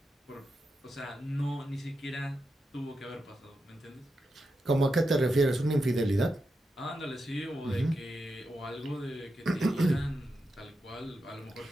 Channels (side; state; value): both; normal; correlation 0.88